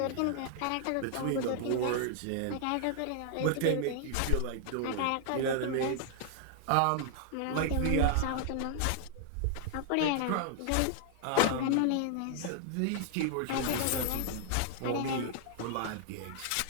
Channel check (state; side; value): different; both; correlation 0.00